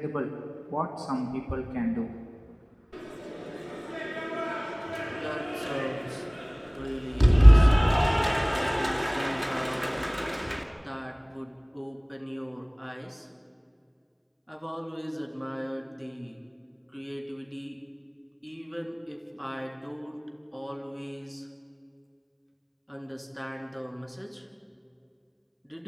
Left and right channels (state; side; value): identical; both; correlation 1.00